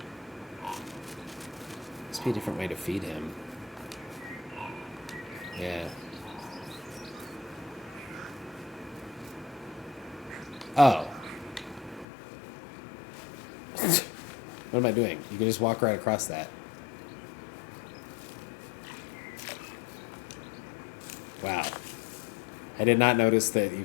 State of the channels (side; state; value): right; drops out; at 12.1 s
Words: Must be a different way to feed him. Yeah. Oh. What am I doing? You can just walk right across that. Wow. I did not notice that you